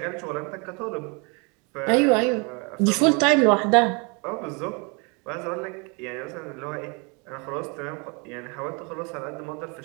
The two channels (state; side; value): quieter; left; 31.9 dB